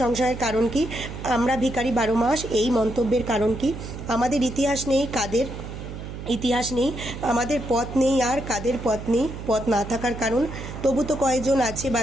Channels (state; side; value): noise; right; hum, 9 dB below the sound